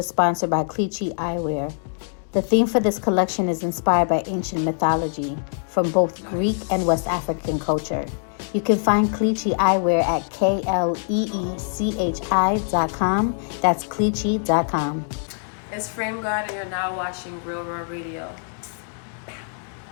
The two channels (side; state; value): right; silent; 63 dB below the other